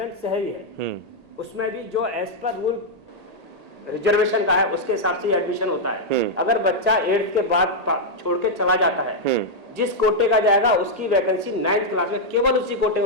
शहरी है। उसमें भी जो एज पर रूल रिजर्वेशन का है उसके हिसाब से एडमिशन होता है। अगर बच्चा 8th के बाद छोड़ के चला जाता है, जिस कोटे का जाएगा उसकी वैकेंसी 9th क्लास में केवल उसी कोटे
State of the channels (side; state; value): left; late; 1.8 ms